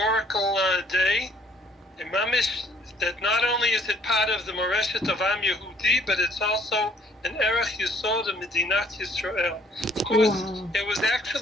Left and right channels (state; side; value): normal; both; correlation 0.61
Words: day. And Mamish, that not only is it part of the Moreshet of Am Yehudi, but it's also an erech yesod of Medinat Yisrael. Of course, it was